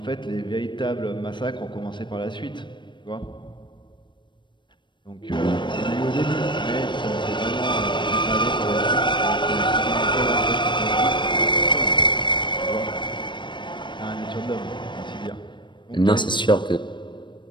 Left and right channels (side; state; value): right; late; 0.23 ms